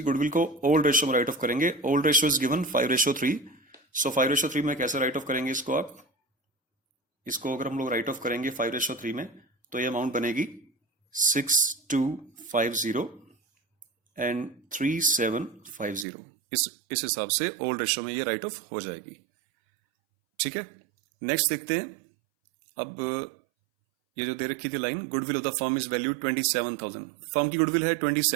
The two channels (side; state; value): left; drops out; at 16.1 s